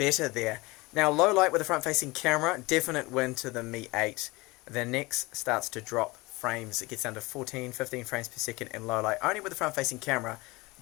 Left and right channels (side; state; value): right; quieter; 23.0 dB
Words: there. Now, low light with a front-facing camera, definite win to the Mi 8. The Next starts to drop frames. It gets down to 14, 15 frames per second in low light, only with the front-facing camera.